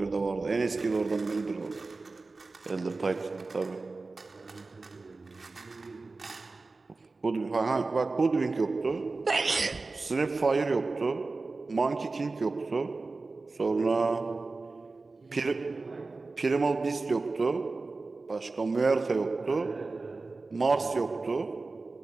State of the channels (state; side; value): quieter; left; 3.7 dB